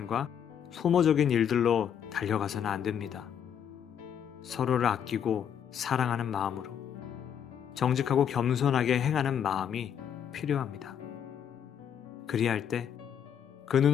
소모적인 일들로 달려가서는 안 됩니다. 서로를 아끼고 사랑하는 마음으로 정직하고 겸손하게 행하는 마음이 필요합니다. 그리할 때, 그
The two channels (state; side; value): quieter; right; 8.6 dB